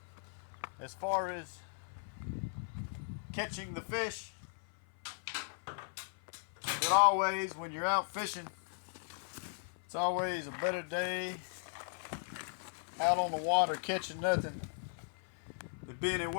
as far as catching the fish. And always, when you're out fishing, it's always a better day out on the water catching nothing than being at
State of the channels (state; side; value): silent; right; 53 dB below the other